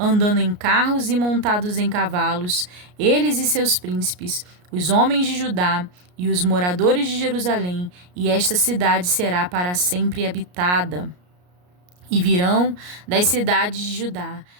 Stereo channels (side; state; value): left; late; 33 ms